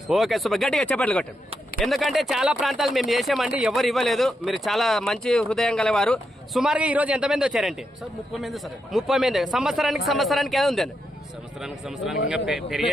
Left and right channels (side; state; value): both; normal; correlation 0.83